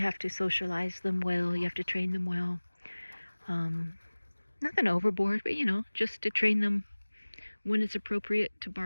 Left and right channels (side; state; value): both; inverted; correlation -1.00